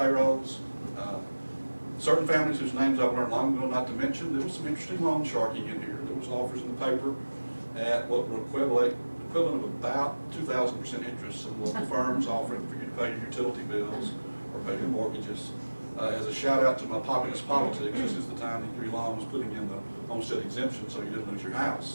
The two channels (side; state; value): both; inverted; correlation -1.00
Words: certain families whose names I've learned long ago not to mention. There was some interesting loan sharking in here. There was offers in the paper at what were equivalent of about 2,000% interest. Some local firms offering for you to pay your utility bills or pay your mortgages. As a shout out to my populist politics, this is the time that Huey Long was putting in the homestead exemption so you didn't lose your